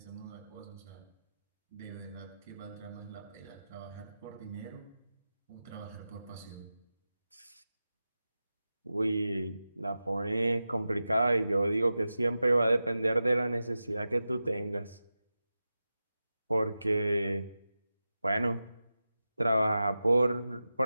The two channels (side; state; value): both; inverted; correlation -0.93